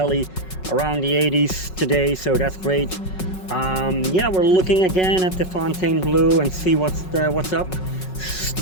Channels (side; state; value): right; late; 5.4 ms